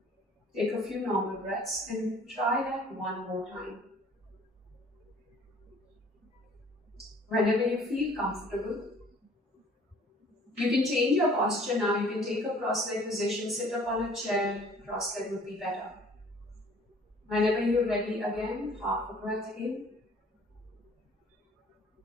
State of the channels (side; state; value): both; normal; correlation 0.54